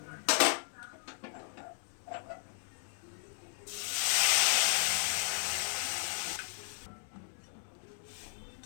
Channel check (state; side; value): silent; right; 54 dB below the other